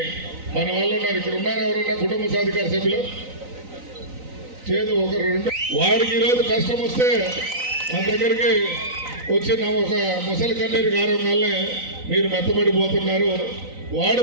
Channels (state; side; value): late; left; 3.9 ms